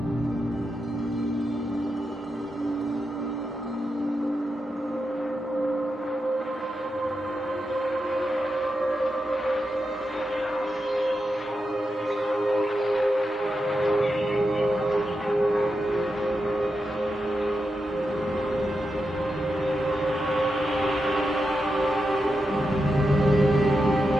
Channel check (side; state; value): both; normal; correlation 0.87